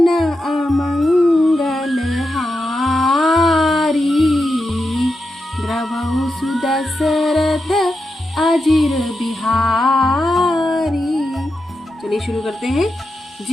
अमंगल हारी, द्रवहु सुदशरथ अजिर बिहारी। चलिए शुरू करते हैं।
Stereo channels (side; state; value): both; normal; correlation 0.88